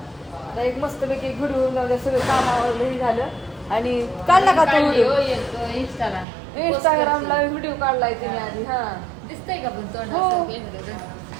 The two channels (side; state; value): left; drops out; at 6.2 s